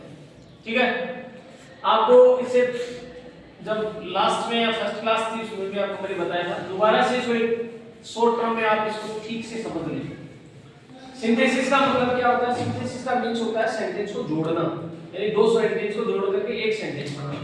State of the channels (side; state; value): both; identical; correlation 1.00